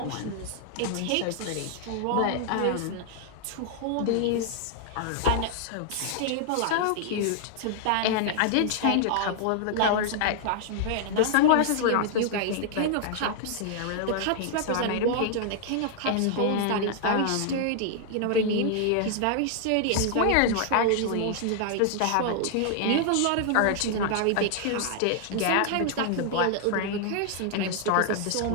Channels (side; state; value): both; different; correlation 0.00